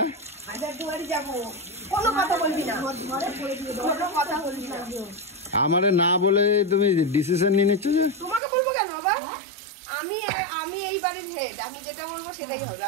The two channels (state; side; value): drops out; left; at 8.4 s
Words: হাজার দুয়ারি যাবো। কোনো কথা বলবি না, কোনো কথা বলবি না। আমারে না বলে তুমি ডিসিশন নিয়ে নিচ্ছ যে? তোমাকে বলবো কেন বাবা? আমি এই বাড়ির হেড, আমি যেটা বলবো সেটাই হবে।